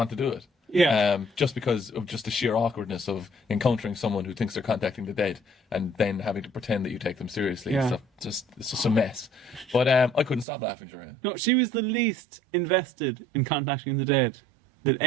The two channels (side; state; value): left; drops out; at 10.5 s